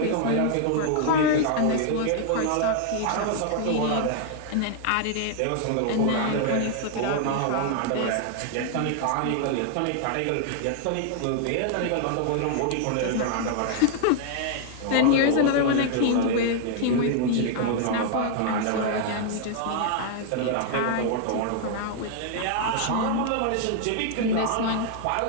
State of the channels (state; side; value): different; both; correlation 0.00